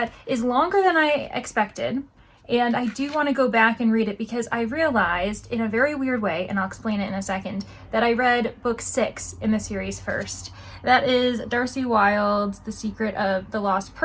is longer than I expected. And I do want to go back and read it because I realized in a very weird way, and I'll explain it in a second, that I read book 6 in the series first. That is Darcie Wilde's The Secret of the Lost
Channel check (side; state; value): both; identical; correlation 1.00